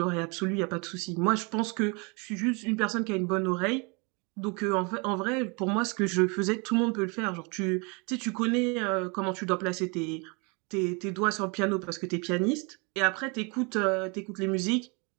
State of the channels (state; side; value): quieter; left; 31.0 dB